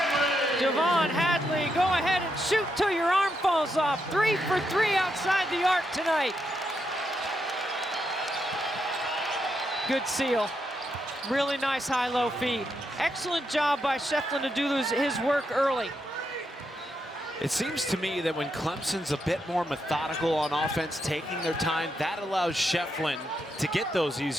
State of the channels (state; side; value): normal; both; correlation 0.82